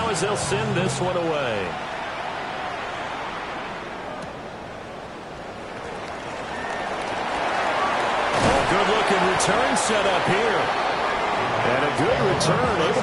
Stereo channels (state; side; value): identical; both; correlation 1.00